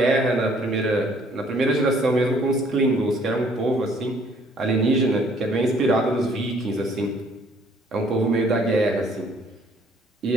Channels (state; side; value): normal; both; correlation 0.61